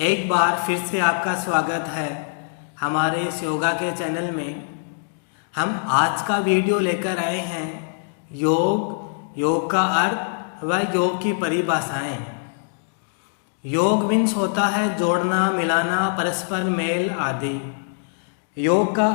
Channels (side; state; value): right; silent; digital silence